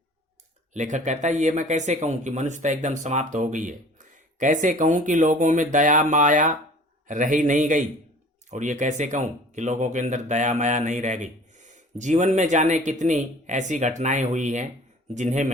लेखक कहता है, ये मैं कैसे कहूं कि मनुष्यता एकदम समाप्त हो गई है। कैसे कहूं कि लोगों में दया माया रही नहीं गई। और ये कैसे कहूं कि लोगों के अंदर दया माया नहीं रह गई। जीवन में जाने कितनी ऐसी घटनाएं हुई हैं जिन्हें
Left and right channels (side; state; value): both; normal; correlation 0.47